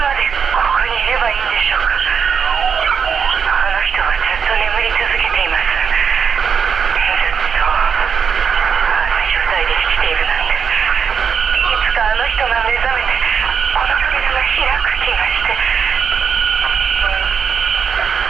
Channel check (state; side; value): quieter; left; 6.6 dB